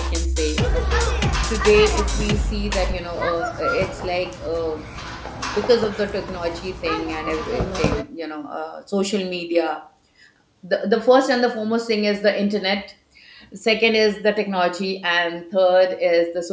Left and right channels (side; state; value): both; identical; correlation 1.00